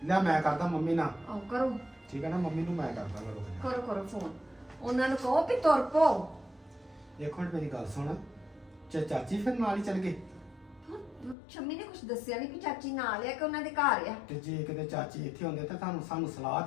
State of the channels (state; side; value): drops out; right; at 11.4 s